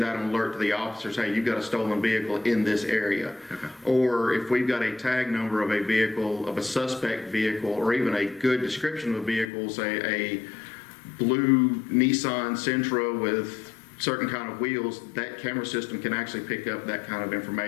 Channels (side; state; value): right; drops out; at 9.5 s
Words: out an alert to the officers, hey, you've got a stolen vehicle in this area. Okay. Or if we've got a tag number of a vehicle, of a suspect vehicle, or even a good description of a vehicle, say a blue Nissan Sentra with certain kind of wheels, that camera system can actually pick up that kind of